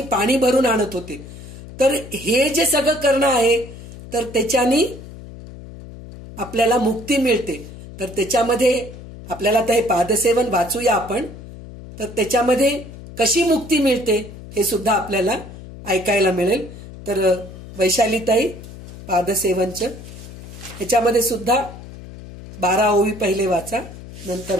पाणी भरून आणत होते. तर हे जे सगळं करणं आहे तर त्याच्यानी आपल्याला मुक्ती मिळते. तर त्याच्यामध्ये आपल्याला आता हे पादसेवन वाचूया आपण. तर त्याच्यामध्ये कशी मुक्ती मिळते हे सुद्धा आपल्याला ऐकायला मिळेल. तर वैशालीताई पादसेवनचं ह्याच्यामध्ये सुद्धा 12 ओवी पहिले वाचा, नंतर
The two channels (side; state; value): left; noise; hum, 15 dB below the sound